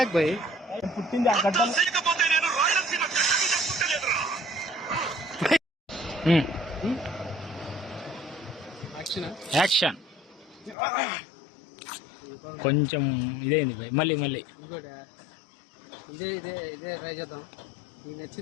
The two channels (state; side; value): drops out; right; at 10.8 s